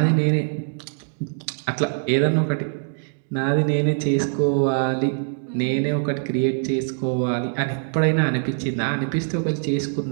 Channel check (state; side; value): silent; left; digital silence